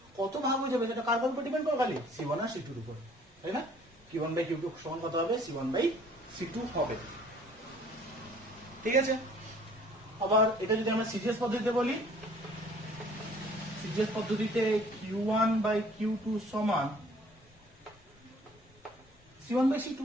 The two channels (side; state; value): both; normal; correlation 0.55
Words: কত ভাগ হয়ে যাবে সেটা কার উপর ডিপেন্ড করে, খালি C1 আর C2 এর উপর, তাই না? Q1 বাই Q2 সমান কত হবে, C1 বাই C2 হবে। ঠিক আছে, আবার এটা যদি আমরা সিজিএস পদ্ধতিতে বলি, সিজিএস পদ্ধতিতে Q1 বাই Q2 সমান C1 বাই C2,